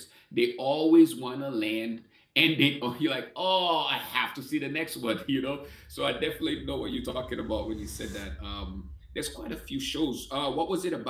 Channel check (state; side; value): identical; both; correlation 1.00